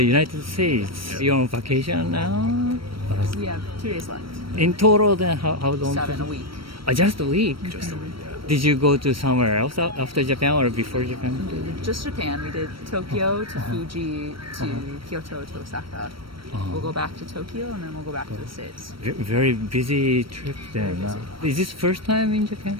United States. You're on vacation now? We have 2 days left. In total, then how long? 7 a week. Just a week? Just a week, yeah. Did you go to somewhere else after Japan or before Japan? Just Japan. We did Tokyo to Fuji to Kyoto to Osaka. We'll go back to Tokyo and then we'll go back to the States. Very busy trip then. Is this first time in Japan?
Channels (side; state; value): left; late; 0.74 ms